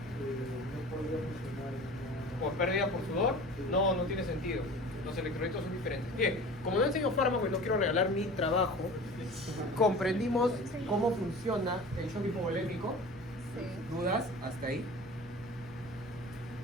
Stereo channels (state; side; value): normal; both; correlation 0.39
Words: no podría funcionar en una... ¿Por pérdida por sudor? No, no tiene sentido. Los electrolitos son diferentes. Bien, como no enseño fármaco y no quiero regalar mi trabajo, comprendimos cómo funciona el shock hipovolémico. Sí. ¿Dudas? ¿Hasta ahí?